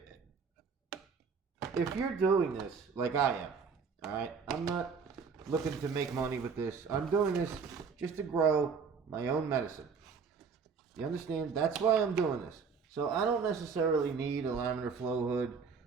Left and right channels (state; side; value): quieter; left; 5.6 dB